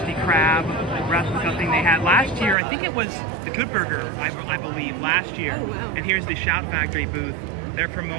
Krab replica thing they had last year. I think it was the Good Burger, I believe, last year. Oh, wow. And here's the Shout Factory booth. They're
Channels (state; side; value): drops out; left; at 2.6 s